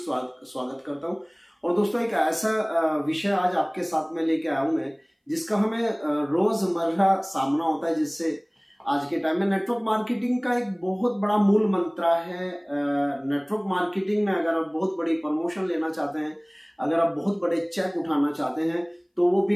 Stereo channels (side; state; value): both; identical; correlation 1.00